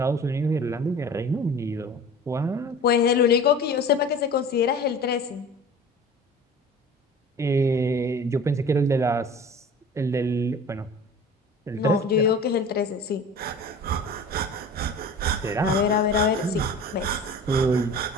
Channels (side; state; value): both; normal; correlation 0.40